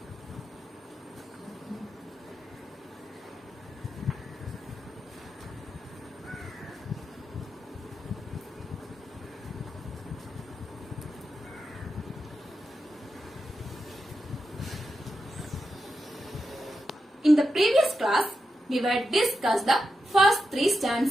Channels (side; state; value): both; normal; correlation 0.88